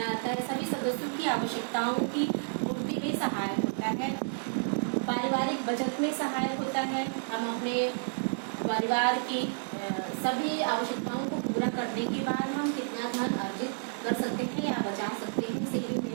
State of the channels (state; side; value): silent; left; 57 dB below the other